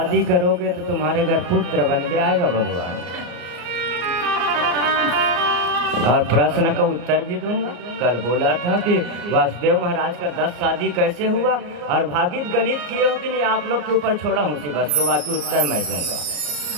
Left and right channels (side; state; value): left; late; 34 ms